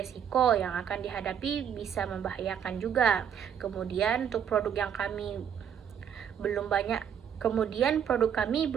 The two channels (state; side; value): quieter; left; 8.4 dB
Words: yang akan dihadapi bisa membahayakan juga. Kemudian untuk produk yang kami belum banyak produk kami